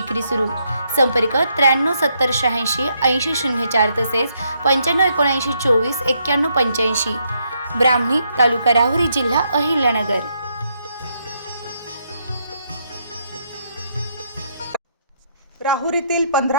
सुरू। संपर्क 93 70 86 80 04 तसेच 95 79 24 91 85। ब्राह्मणी, तालुका राहुरी, जिल्हा अहिल्यानगर। राहुरीतील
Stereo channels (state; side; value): inverted; both; correlation -0.75